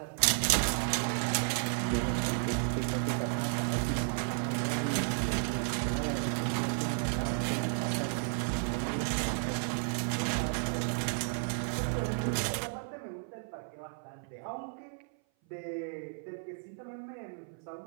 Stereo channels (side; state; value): left; silent; 56 dB below the other